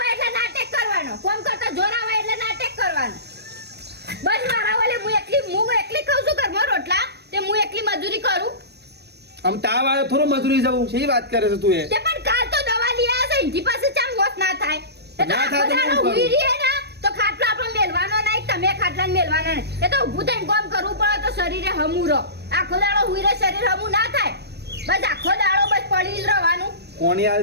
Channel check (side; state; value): left; late; 0.48 ms